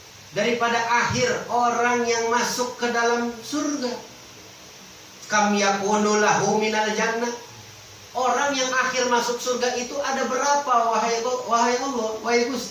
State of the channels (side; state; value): both; identical; correlation 1.00